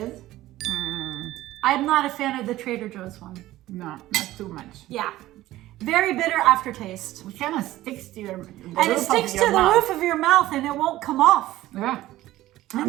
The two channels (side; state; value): left; quieter; 15.7 dB